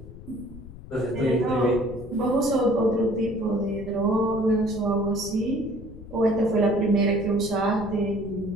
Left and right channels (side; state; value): left; noise; rumble, 15 dB below the sound